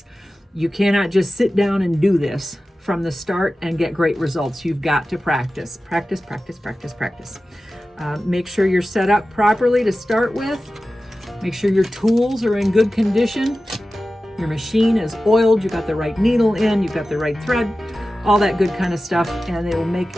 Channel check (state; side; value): normal; both; correlation 0.95